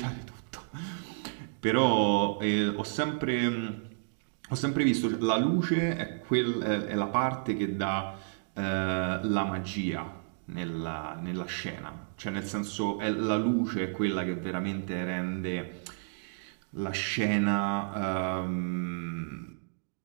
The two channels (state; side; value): silent; left; digital silence